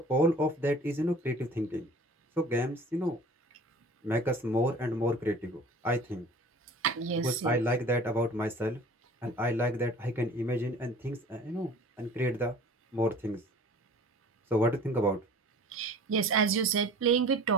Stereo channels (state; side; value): normal; both; correlation 0.45